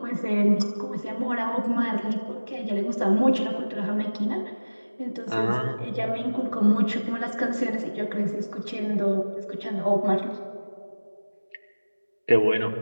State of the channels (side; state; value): both; inverted; correlation -1.00